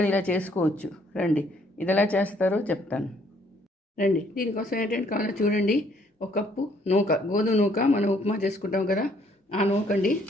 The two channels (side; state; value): both; normal; correlation 0.65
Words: ఇలా చేసుకోవచ్చు. రండి, ఇది ఎలా చేస్తారో చెప్తాను. రండి, దీనికోసం ఏంటంటే కావాలో చూడండి. ఒక కప్పు నూక, గోధుమ నూక, మనం ఉప్మా చేసుకుంటాం కదా, ఆ నూకండి.